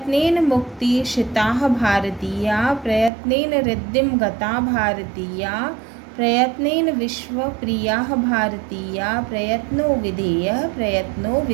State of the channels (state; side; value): drops out; left; at 3.1 s